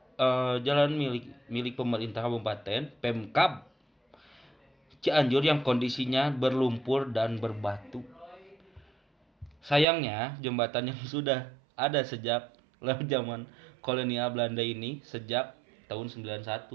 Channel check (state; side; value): drops out; left; at 9.9 s